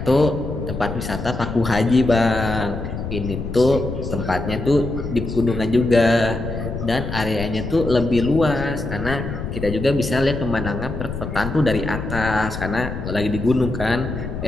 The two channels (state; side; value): noise; left; rumble, 6 dB below the sound